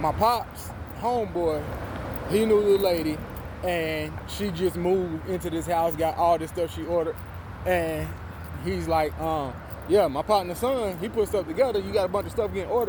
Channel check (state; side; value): identical; both; correlation 1.00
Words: pops, homeboy. He knew the lady, and she just moved into this house, got all this stuff she ordered, and he's like, yeah, my partner's son, he put stuff together. You got a bunch of stuff getting